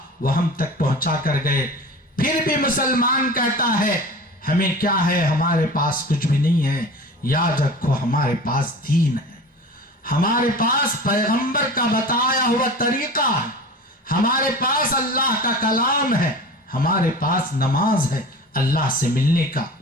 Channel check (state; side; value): normal; both; correlation 0.36